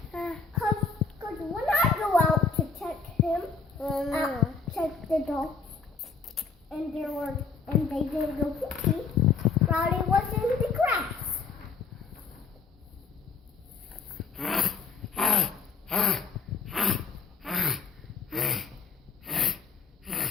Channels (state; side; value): quieter; right; 5.0 dB